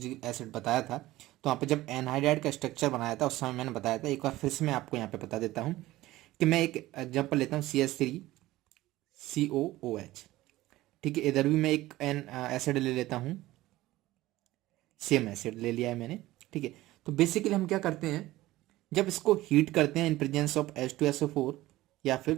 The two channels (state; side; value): quieter; left; 17.0 dB